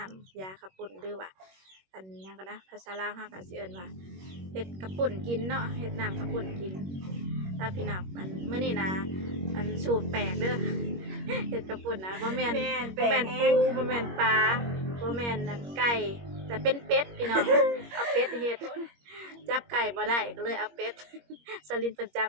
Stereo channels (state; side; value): late; left; 21 ms